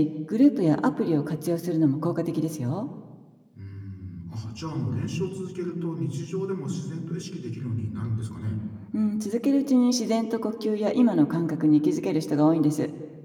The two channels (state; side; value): identical; both; correlation 1.00